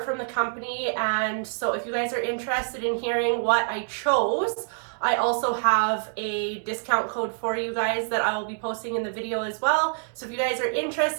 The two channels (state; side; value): silent; left; digital silence